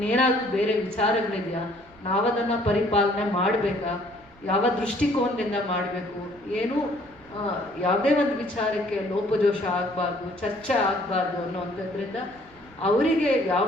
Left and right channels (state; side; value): noise; right; rumble, 27 dB below the sound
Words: ಬೇರೆ ವಿಚಾರಗಳಿದೆಯಾ? ನಾವದನ್ನು ಪರಿಪಾಲನೆ ಮಾಡಬೇಕಾ? ಯಾವ ದೃಷ್ಟಿಕೋನದಿಂದ ಮಾಡಬೇಕು? ಏನೂ ಯಾವುದೇ ಒಂದು ವಿಚಾರಕ್ಕೆ ಲೋಪದೋಷ ಆಗಬಾರ್ದು, ಚರ್ಚೆ ಆಗಬಾರ್ದು ಅನ್ನೋವಂಥದ್ರಿಂದ ಅವರಿಗೆ